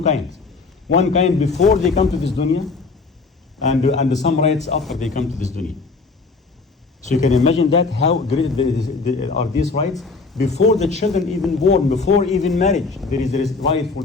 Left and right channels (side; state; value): right; quieter; 4.1 dB